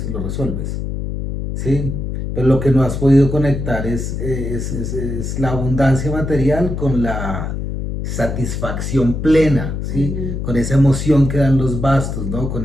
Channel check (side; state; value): left; noise; hum, 4 dB below the sound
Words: lo resuelves, ¿sí? Pero lo que no has podido conectar es la abundancia material con la satisfacción plena, ¿sí? Con esa emoción que dan los bastos, ¿no?